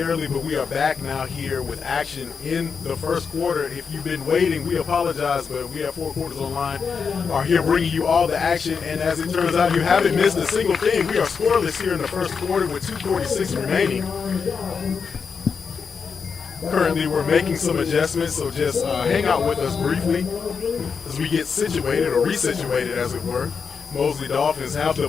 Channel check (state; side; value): quieter; right; 5.8 dB